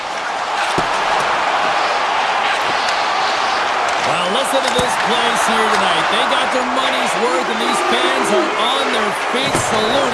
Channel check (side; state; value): both; identical; correlation 1.00